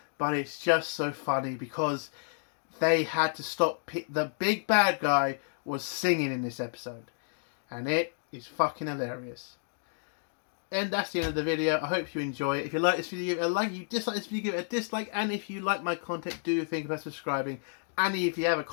but it's just so funny because they had to stop. The big bad guy was singing in this episode, and it is fucking hilarious. And that's the end of the video. I hope you enjoy it. If you like this video, give it a like. If you dislike this video, give it a dislike. And if you like my content, do think about subscribing. And if you have a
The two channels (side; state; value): right; silent; digital silence